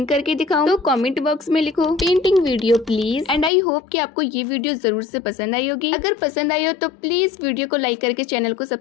करके दिखाऊं तो कमेंट बॉक्स में लिखो painting video please. And I hope कि आपको ये वीडियो जरूर से पसंद आई होगी। अगर पसंद आई हो तो प्लीज वीडियो को लाइक करके चैनल को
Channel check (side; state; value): right; drops out; at 3.5 s